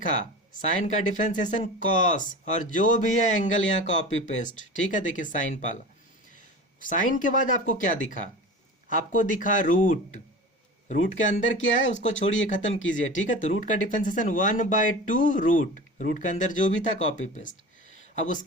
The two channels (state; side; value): normal; both; correlation 0.33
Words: साइन का डिफरेंशिएशन कॉस, और जो भी है एंगल यहाँ कॉपी पेस्ट। ठीक है, देखिए साइन पाला, साइन के बाद आपको क्या दिखा? आपको दिखा रूट। रूट के अंदर क्या है उसको छोड़िए, खत्म कीजिए। ठीक है, तो रूट का डिफरेंशिएशन 1/2 रूट, रूट के अंदर जो भी था कॉपी पेस्ट। अब